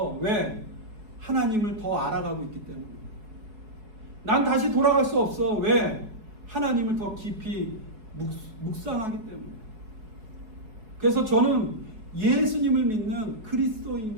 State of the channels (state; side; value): late; left; 4.7 ms